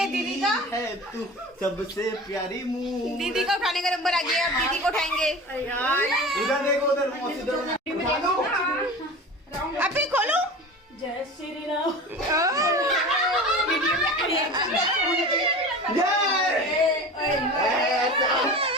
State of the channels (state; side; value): normal; both; correlation 0.34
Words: दीदी का, है तू सबसे प्यारी मुँह। दीदी का उठाने का नंबर आ गया, अब दीदी को उठाएंगे। उधर देखो, उधर मौसी उधर। अभी खोलो। जय श्री राम।